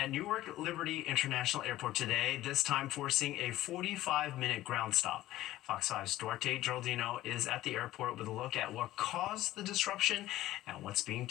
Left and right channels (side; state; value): right; quieter; 15.4 dB